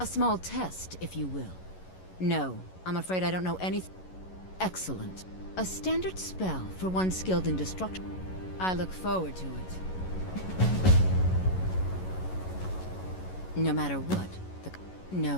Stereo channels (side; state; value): right; late; 11 ms